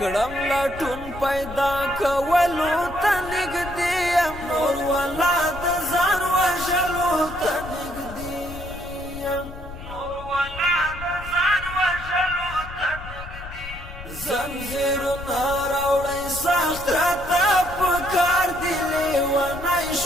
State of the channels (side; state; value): left; noise; rumble, 12 dB below the sound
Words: لټون پیدا کولو ته نږدې یم نور والا د ځان وژلو ته نږدې یم زنجیرونه راوړی سخت راته په کار دی لیونی